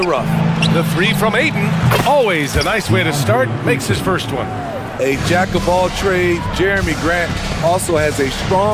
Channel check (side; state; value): both; identical; correlation 1.00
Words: rough. The 3 from Ayton, always a nice way to start, makes his first one. A jack of all trades, Jeremy Grant also has a